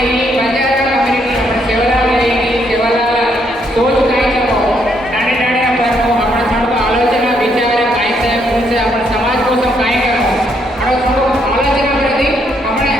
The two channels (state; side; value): normal; both; correlation 0.73